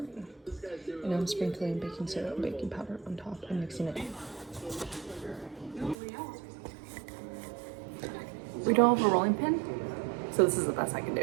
And now I'm sprinkling baking soda and baking powder on top and mixing it. We don't have a rolling pin, so this is the best I can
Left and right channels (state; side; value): drops out; left; at 6.0 s